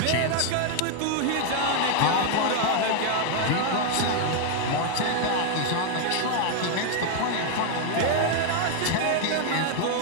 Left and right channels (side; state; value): both; different; correlation 0.00